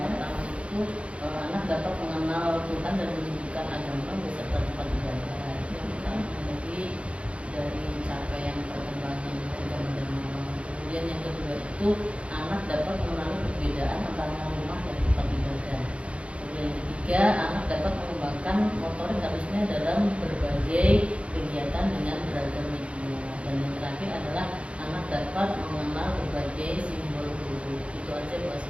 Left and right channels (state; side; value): late; left; 0.061 ms